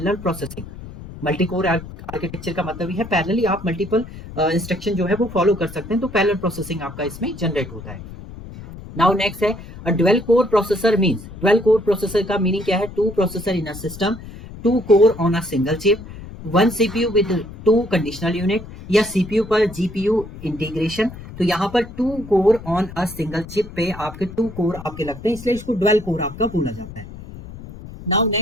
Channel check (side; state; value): left; noise; rumble, 14 dB below the sound